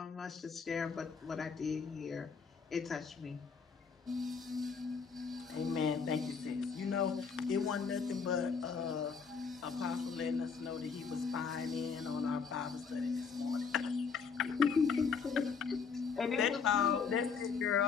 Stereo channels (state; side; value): quieter; right; 5.7 dB